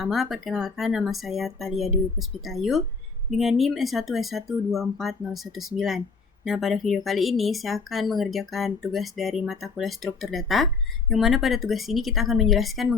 perkenalkan nama saya Thalia Dwi Puspitayu dengan NIM S1S1240119. Nah, pada video kali ini saya akan mengerjakan tugas dari mata kuliah struktur data, yang mana pada tugas ini kita akan menjelaskan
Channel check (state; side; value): quieter; right; 4.7 dB